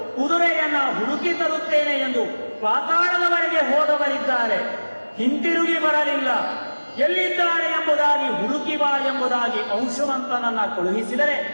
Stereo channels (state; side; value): inverted; both; correlation -1.00